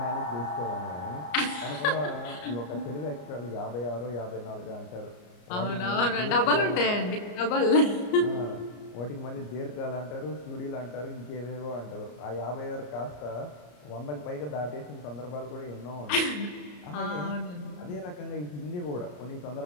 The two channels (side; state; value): right; late; 34 ms